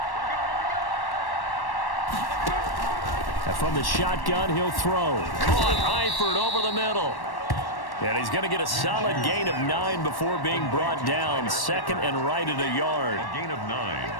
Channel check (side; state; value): right; late; 1.1 ms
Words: From the shotgun, he'll throw. Caught Eifert over the middle. And he's going to get a solid gain of 9 before being brought down. 2nd and right at a yard. A gain of 9